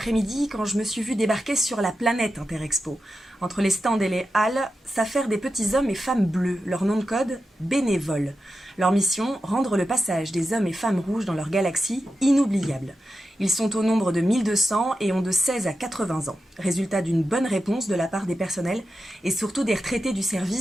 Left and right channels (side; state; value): both; normal; correlation 0.91